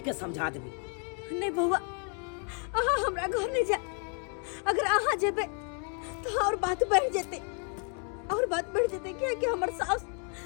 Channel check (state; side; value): quieter; right; 39.6 dB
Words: के समझा देबी नहीं बउआ अहाँ हमरा घर नहीं जा अगर अहाँ जेबे तो और बात बढ़ जेते क्या कि हमर सास